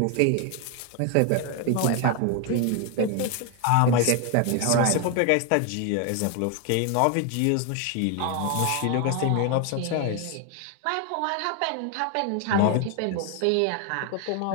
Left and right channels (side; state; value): both; different; correlation 0.01